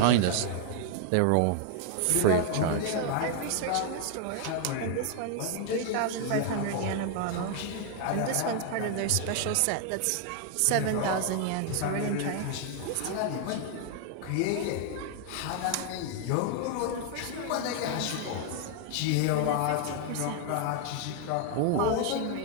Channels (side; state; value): both; different; correlation 0.00